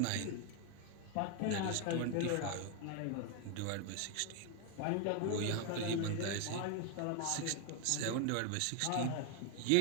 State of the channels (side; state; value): both; different; correlation 0.01